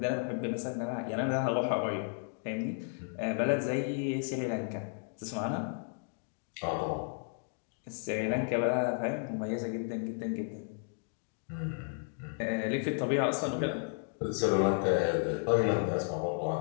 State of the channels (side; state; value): right; silent; 55 dB below the other